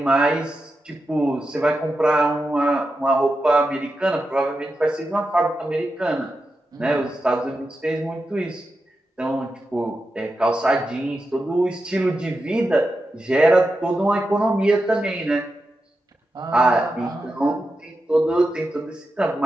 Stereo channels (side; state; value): both; normal; correlation 0.89